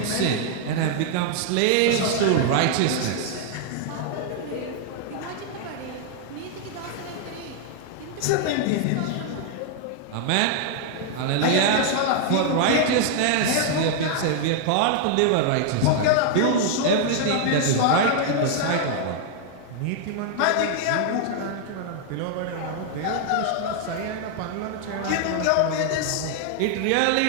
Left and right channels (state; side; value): different; both; correlation 0.00